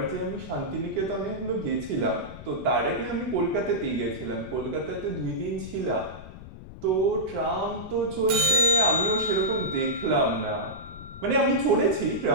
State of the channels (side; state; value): left; noise; rumble, 14 dB below the sound